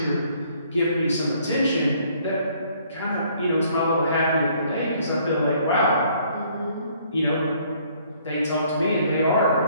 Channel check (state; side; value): inverted; both; correlation -0.62